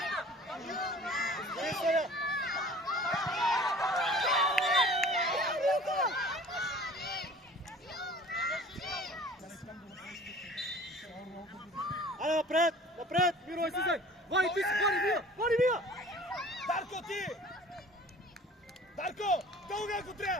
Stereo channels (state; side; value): normal; both; correlation 0.46